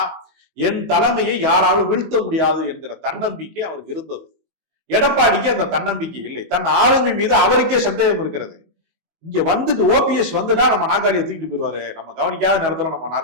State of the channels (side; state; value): left; late; 19 ms